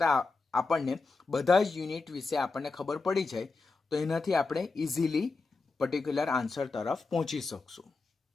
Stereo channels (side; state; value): right; quieter; 4.0 dB